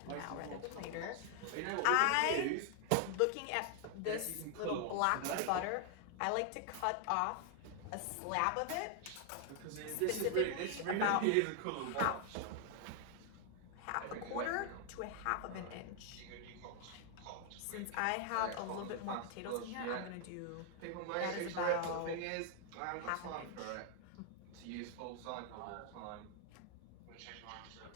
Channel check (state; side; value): different; both; correlation 0.00